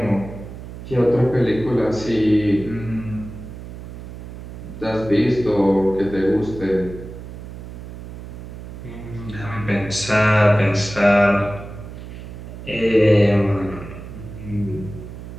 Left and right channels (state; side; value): noise; right; hum, 12 dB below the sound